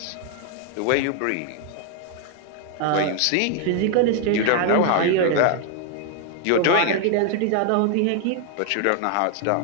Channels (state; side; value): different; both; correlation 0.00